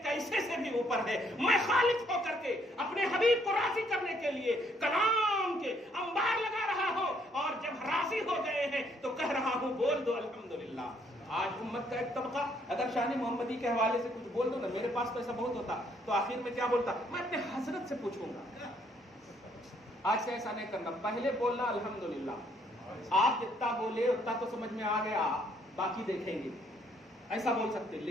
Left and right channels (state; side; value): normal; both; correlation 0.68